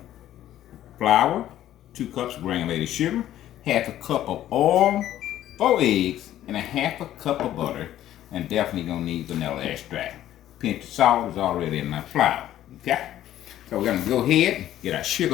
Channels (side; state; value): right; quieter; 12.7 dB